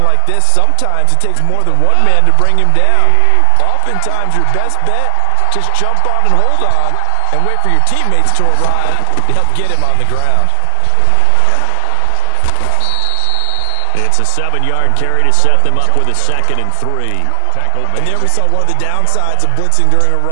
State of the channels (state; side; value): different; both; correlation 0.00